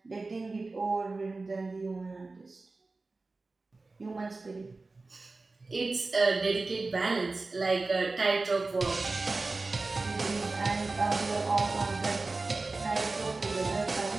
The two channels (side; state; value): left; quieter; 3.6 dB